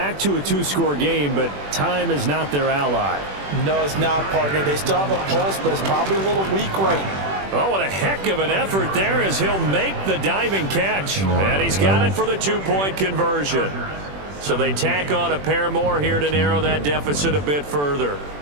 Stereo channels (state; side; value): late; left; 21 ms